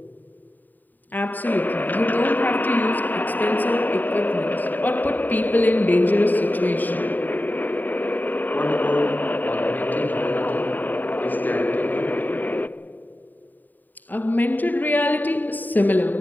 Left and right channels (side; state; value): right; late; 0.087 ms